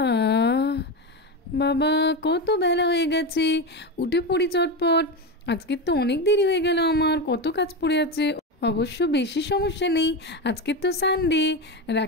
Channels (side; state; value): both; normal; correlation 0.17